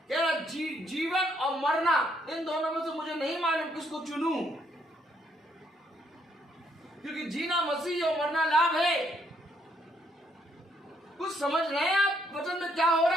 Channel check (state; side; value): normal; both; correlation 0.72